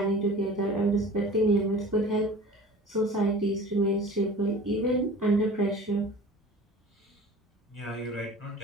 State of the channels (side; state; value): both; normal; correlation 0.41